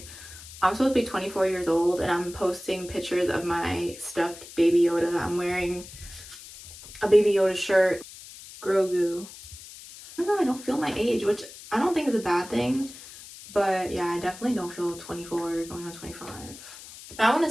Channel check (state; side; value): noise; left; hiss, 16 dB below the sound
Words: I'm supposed to be 24 years old and I'm posting pictures of my stuffed Baby Yoda. I'm wearing a Baby Yoda shirt. Grogu. I don't know, I don't feel my age, which I don't think is a bad thing. But yeah, I definitely don't feel 24 going on 25. Now, I want